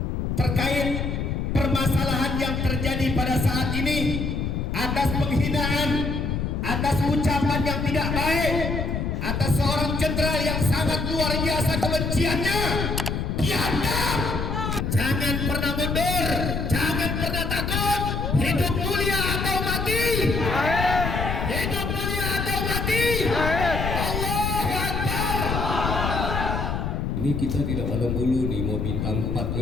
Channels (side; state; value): left; noise; rumble, 1 dB below the sound